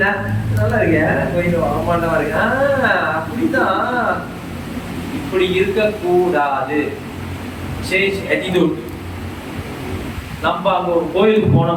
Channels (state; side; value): identical; both; correlation 1.00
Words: நல்லா இருக்கேன், கோயில் ஆமாண்டவா இருக்கு. அப்படிதான், இப்படி இருக்கக்கூடாது. Change attitude. நம்ம அங்க ஒரு கோயிலுக்கு